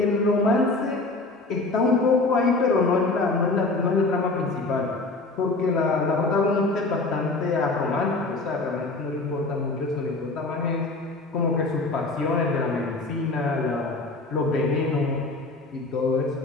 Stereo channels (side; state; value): right; quieter; 3.3 dB